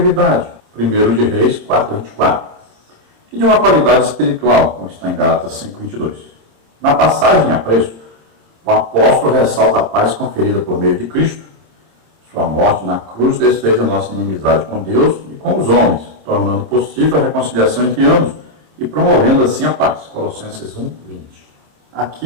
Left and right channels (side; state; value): left; late; 26 ms